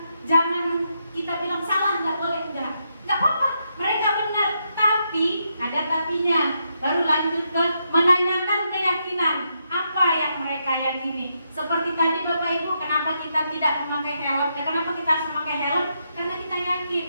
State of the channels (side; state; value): both; inverted; correlation -0.81